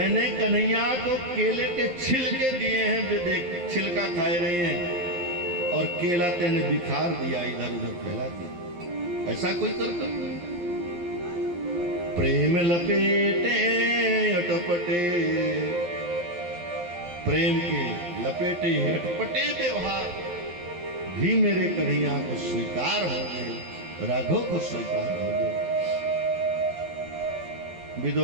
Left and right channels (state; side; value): late; left; 11 ms